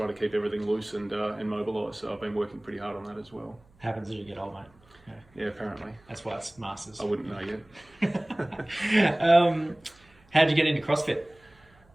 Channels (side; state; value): right; noise; hum, 30 dB below the sound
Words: to keep everything loose and mobilised. So I've been working pretty hard on that as well. Happens as you get old, mate. Yeah, apparently. That's why it's Masters. I wouldn't know yet. How'd you get into CrossFit?